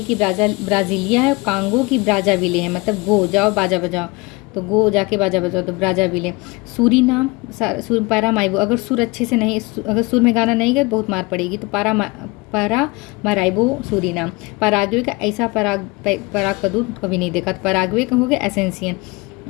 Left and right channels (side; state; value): right; quieter; 24.7 dB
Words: की ब्राज़ीलिया है। कांगो की ब्राज़ाविले है, मतलब गो जाओ बाजा बजाओ, तो गो जाके बाजा बजाओ, तो ब्राज़ाविले। सूरीनाम, पैरामाइबो, अगर सुर अच्छे से नहीं, अगर सुर में गाना नहीं गया तो बहुत मार पड़ेगी, तो पैरामाराइबो सूरीनाम। पराग्वे का ऐसा पराग का दूध कभी नहीं देखा, तो पराग्वे का हो गया एसेंसियन।